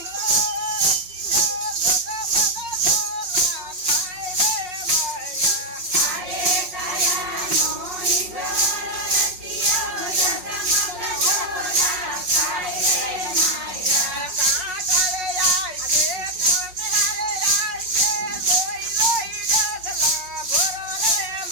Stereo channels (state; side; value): late; left; 5.5 ms